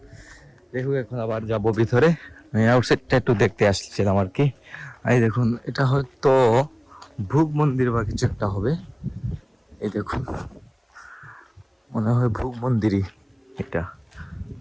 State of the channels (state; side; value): identical; both; correlation 1.00